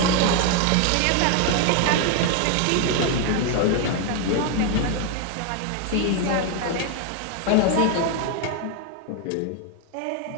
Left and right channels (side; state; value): both; different; correlation 0.01